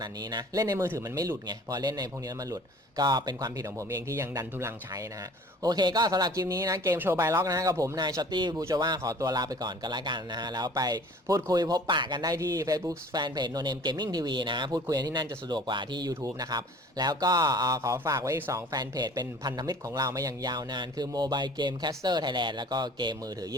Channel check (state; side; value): normal; both; correlation 0.48